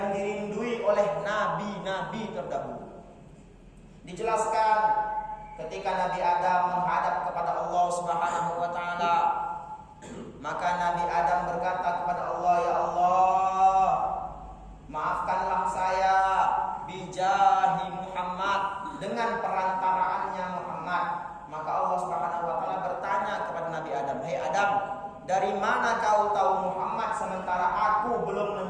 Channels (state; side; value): identical; both; correlation 1.00